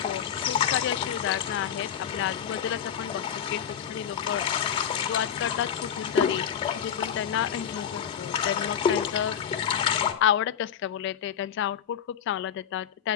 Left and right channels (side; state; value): right; quieter; 8.7 dB